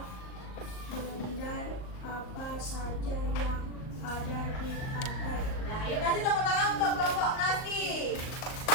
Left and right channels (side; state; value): right; late; 38 ms